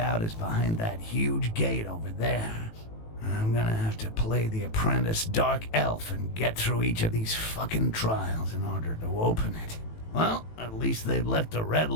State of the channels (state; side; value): late; right; 18 ms